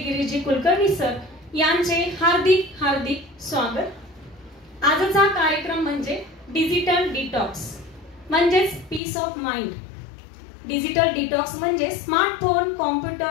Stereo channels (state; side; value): drops out; right; at 9.0 s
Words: कुलकर्णी सर यांचे हार्दिक हार्दिक स्वागत. आजचा कार्यक्रम म्हणजे डिजिटल डिटॉक्स म्हणजेच peace of mind. Digital detox म्हणजे स्मार्टफोन,